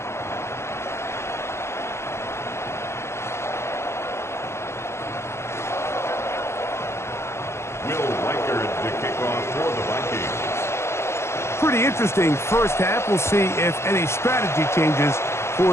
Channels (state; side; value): late; right; 0.13 ms